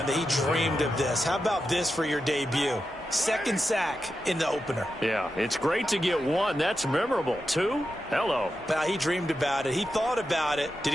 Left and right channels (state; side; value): normal; both; correlation 0.89